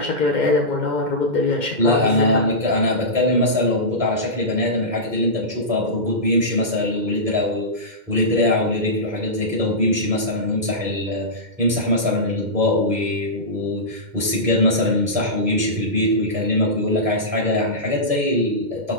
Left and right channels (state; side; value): late; left; 2.1 ms